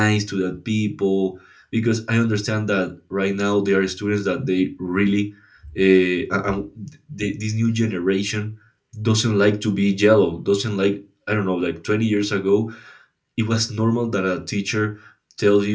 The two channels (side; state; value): both; identical; correlation 1.00